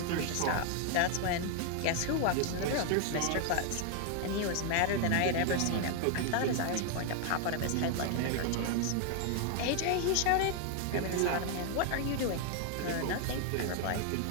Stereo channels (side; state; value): both; different; correlation 0.00